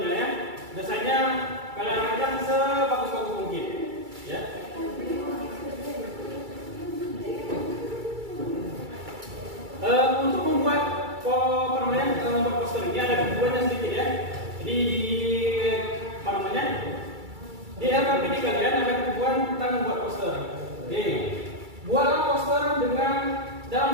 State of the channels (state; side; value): late; left; 2.3 ms